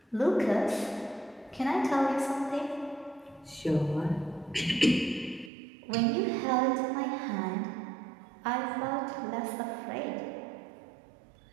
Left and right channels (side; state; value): left; drops out; at 5.5 s